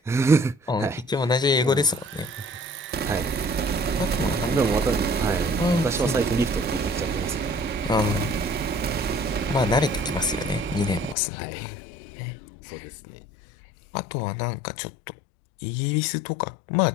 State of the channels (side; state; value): right; drops out; at 11.2 s